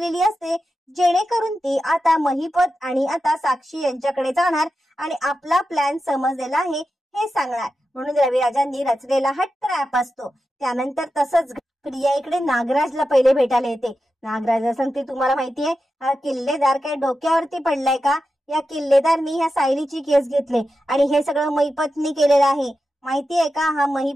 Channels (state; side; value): normal; both; correlation 0.91